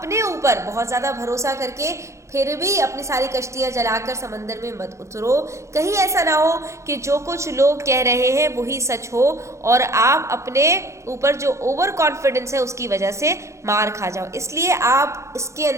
ऊपर बहुत ज़्यादा भरोसा करके फिर भी अपनी सारी कश्तियाँ जलाकर समंदर में मत उतरो। कहीं ऐसा ना हो कि जो कुछ लोग कह रहे हैं वही सच हो और आप अपने ऊपर जो ओवर कॉन्फिडेंस है उसकी वजह से मार खा जाओ। इसलिए आप इसके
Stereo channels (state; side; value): late; left; 0.14 ms